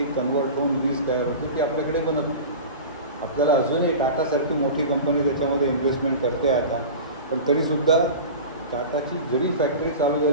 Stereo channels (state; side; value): inverted; both; correlation -0.33